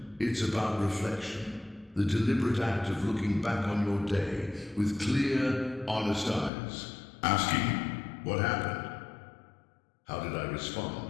It's about reflection. The deliberate act of looking back on your day with clear, honest eyes. Asking, what happened? How did I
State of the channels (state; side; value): drops out; right; at 6.5 s